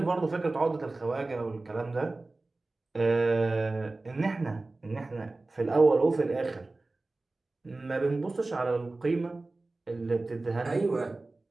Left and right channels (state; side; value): quieter; left; 3.2 dB